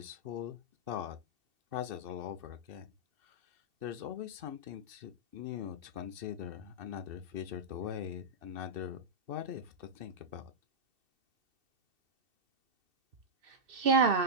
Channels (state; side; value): late; left; 2.7 ms